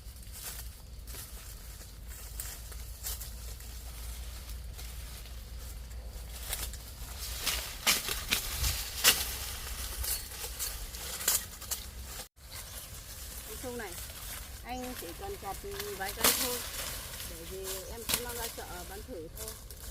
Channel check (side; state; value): both; identical; correlation 1.00